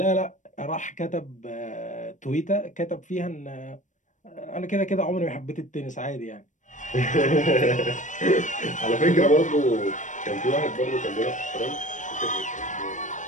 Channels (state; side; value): late; right; 0.36 ms